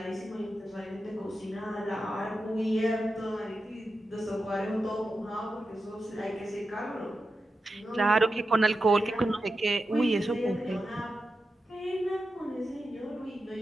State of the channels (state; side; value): normal; both; correlation 0.90